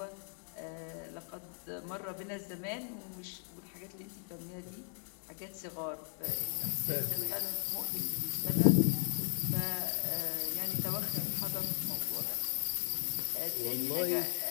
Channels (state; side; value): silent; right; 53 dB below the other